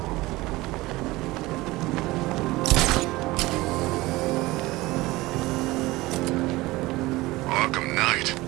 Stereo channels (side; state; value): left; quieter; 19.9 dB